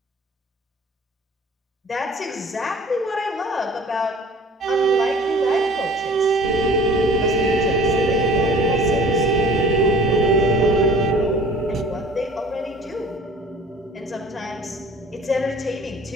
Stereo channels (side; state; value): both; normal; correlation 0.47